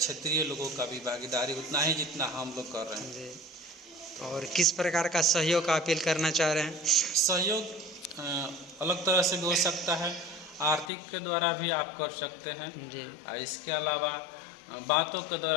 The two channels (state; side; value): drops out; right; at 10.9 s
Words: लोगों का भी भागीदारी उतना ही जितना हम लोग कर रहे हैं। और किस प्रकार का सहयोग का अपील करना चाह रहे हैं? सहयोग अलग तरह से भी हो सकता है, आर्थिक के द्वारा भी आप कर सकते हैं। जी इसके अलावा बातों के